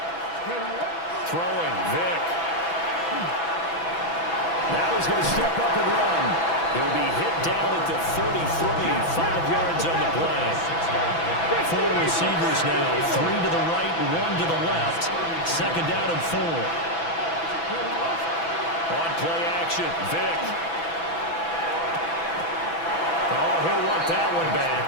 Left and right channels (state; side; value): late; right; 6.0 ms